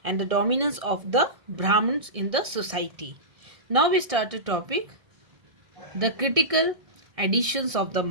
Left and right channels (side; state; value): left; late; 1.6 ms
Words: and the dominance of the Brahmins in the society. Now we start a topic, the critical editions of the